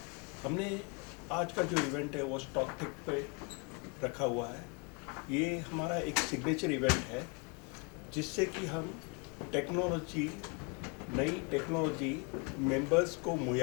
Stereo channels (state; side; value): quieter; right; 32.4 dB